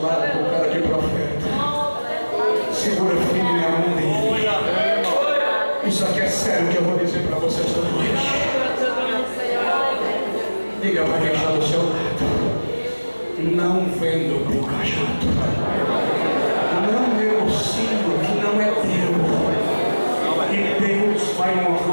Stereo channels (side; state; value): both; inverted; correlation -1.00